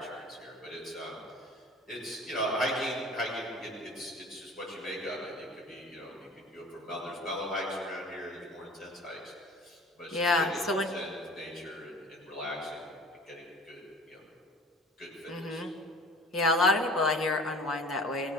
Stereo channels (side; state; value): both; normal; correlation 0.44